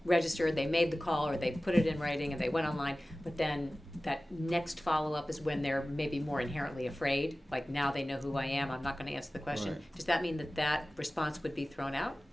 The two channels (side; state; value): both; normal; correlation 0.97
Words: registered, they made the call, or they put it in writing and they went online, but then that next follow-up is when they're maybe more inherently afraid, like now they know who I am, I'm not gonna answer the question. Right. Does that mean that that response would be thrown out?